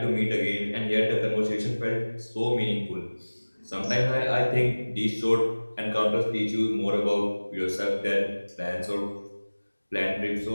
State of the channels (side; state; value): both; inverted; correlation -1.00